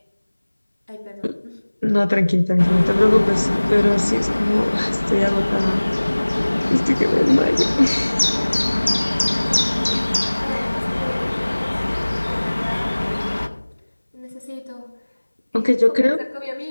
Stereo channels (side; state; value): both; inverted; correlation -1.00